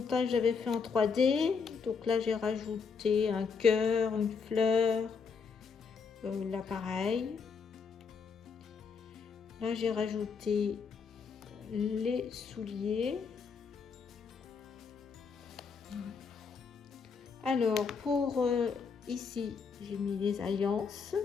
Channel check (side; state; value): right; quieter; 5.6 dB